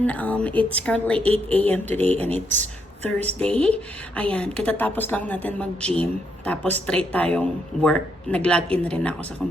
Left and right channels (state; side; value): normal; both; correlation 0.77